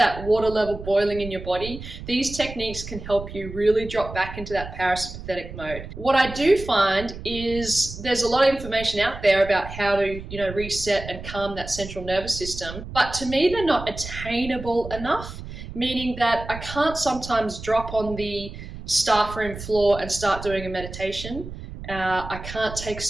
water level boiling in your body, these techniques can help you really drop back into that parasympathetic mode. What I do find is there's a lot of information out there about how to, reset and calm that central nervous system, but to me, they're not attainable enough, meaning that I can't sometimes drop on the staff room floor and start doing a meditation. I can't take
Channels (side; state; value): right; noise; rumble, 11 dB below the sound